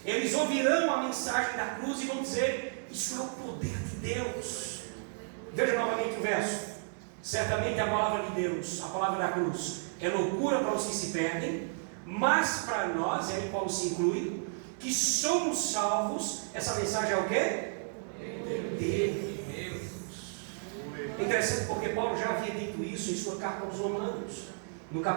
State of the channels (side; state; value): left; silent; digital silence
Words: eles ouvirão a mensagem da cruz e vão dizer, isso é o poder de Deus. Veja novamente o verso. Certamente a palavra de Deus, a palavra da cruz, é loucura para os que se perdem, mas para nós, e aí Paulo se inclui, que somos salvos, essa mensagem é o quê? De Deus. É interessante porque Paulo já havia dito isso em sua carta aos Romanos, no